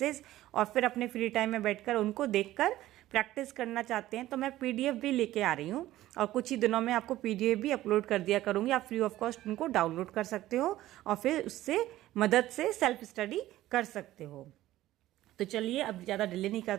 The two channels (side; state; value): left; quieter; 15.1 dB